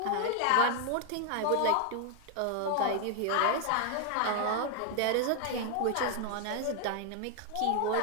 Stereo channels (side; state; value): both; different; correlation 0.00